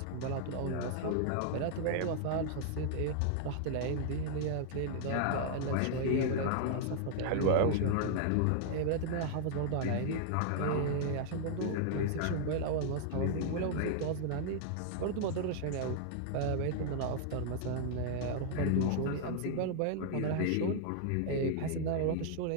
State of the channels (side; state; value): both; different; correlation -0.01